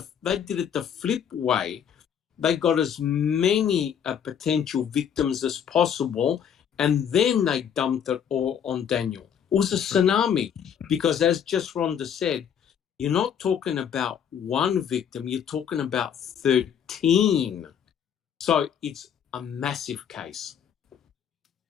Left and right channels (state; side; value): quieter; right; 8.4 dB